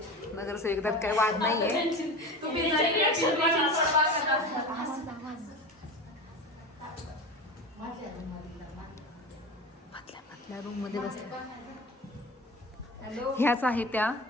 नगरसेविका, त्यात काही वाद नाही आहे. मधल्या रूम मध्ये बसल्या ह्याच आहे त्या.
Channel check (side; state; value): both; normal; correlation 0.30